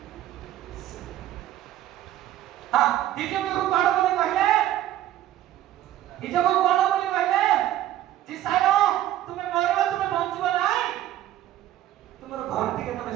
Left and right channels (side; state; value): left; quieter; 13.1 dB